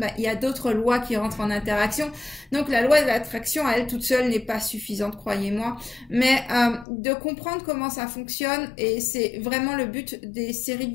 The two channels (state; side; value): drops out; right; at 6.9 s